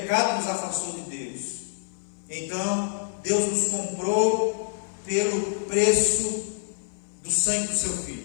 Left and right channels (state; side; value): silent; right; 56 dB below the other